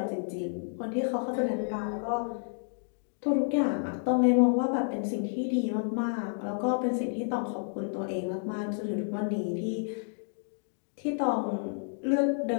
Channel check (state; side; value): silent; right; digital silence